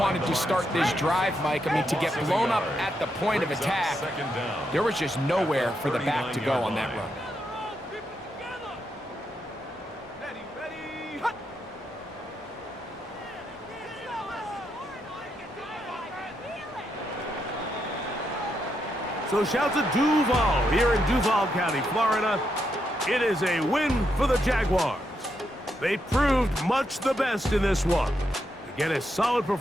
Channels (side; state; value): both; normal; correlation 0.81